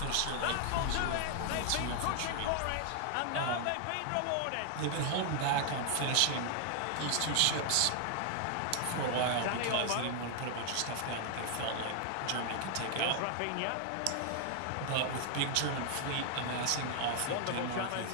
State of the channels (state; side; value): different; both; correlation 0.00